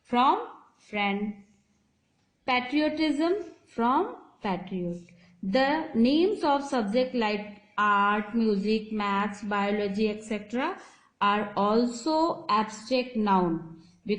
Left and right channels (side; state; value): both; identical; correlation 1.00